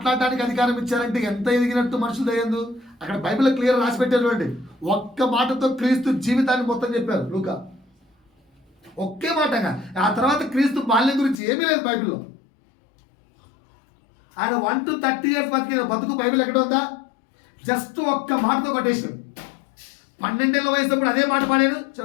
అధికారం ఇచ్చారంటే ఎంత ఎదిగినట్టు మనుషులు దయ్యందు. అక్కడ బైబిల్ క్లియర్ రాసి పెట్టారు చూడండి. ఒక్క మాటతో క్రీస్తు జీవితాన్ని మొత్తం చెప్పారు లూకా. ఒకే మాటగా. ఆ తర్వాత క్రీస్తు బాల్యం గురించి ఏమీ లేదు బైబిల్లో. ఆయన 1 to 30 years బతికిన బతుకు బైబిల్ ఎక్కడ ఉందా? జస్ట్ ఒక్క మాటతో కొటేషన్. 12 ఏళ్ళ వయసుప్పుడు అదే మాట పాడాడు.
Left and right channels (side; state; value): right; drops out; at 11.4 s